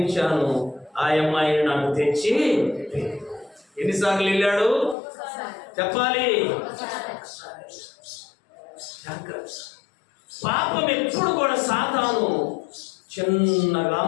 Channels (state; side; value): drops out; right; at 5.0 s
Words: ఆ అమ్మాయిని నాకు తెచ్చి. ఎన్నిసార్లు వెళ్ళాడు చెప్పాలి? జాగ్రత్త. పాపం ఎప్పుడు కూడా సాతాను చిన్నగా